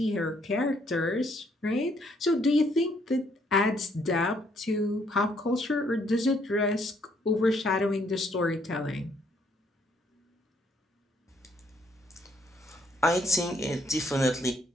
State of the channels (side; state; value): both; normal; correlation 0.69